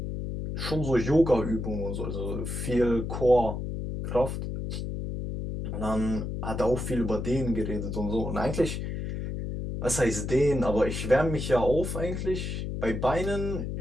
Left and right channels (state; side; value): noise; left; hum, 4 dB below the sound